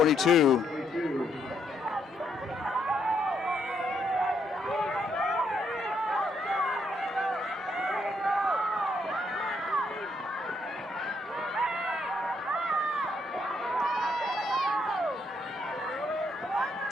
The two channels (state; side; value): normal; both; correlation 0.74